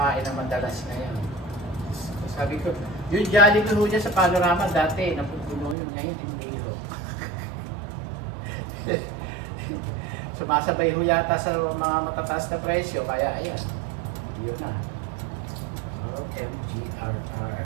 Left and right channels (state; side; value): drops out; left; at 5.8 s